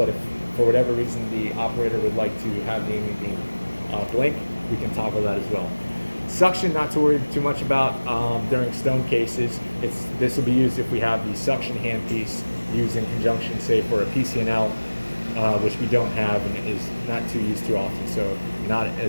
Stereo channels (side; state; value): both; inverted; correlation -1.00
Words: if for whatever reason the operator would like to have the aiming beam blink, we can toggle that as well. Suction, not to worry too much about during stone cases. This will be used if we have the suction handpiece used in conjunction, say, for a PCNL, which we don't have and is not too used too often, so not